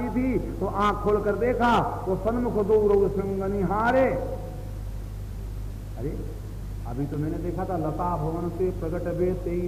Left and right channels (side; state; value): both; identical; correlation 1.00